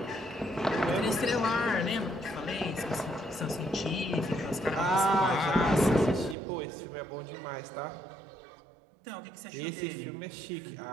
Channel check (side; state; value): left; drops out; at 6.4 s